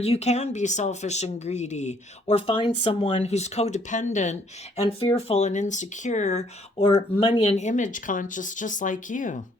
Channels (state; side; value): normal; both; correlation 0.65